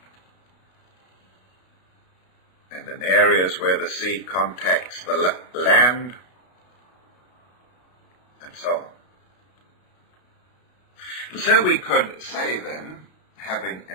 and in areas where the sea contacts the land, and so on. And so we could say then, having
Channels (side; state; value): right; late; 32 ms